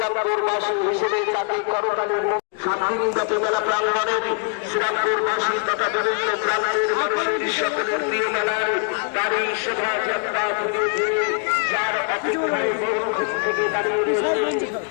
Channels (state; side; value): quieter; right; 37.9 dB